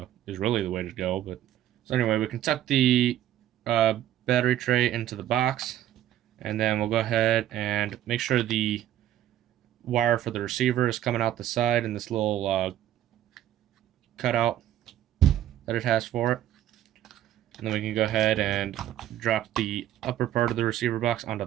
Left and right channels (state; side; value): quieter; left; 12.3 dB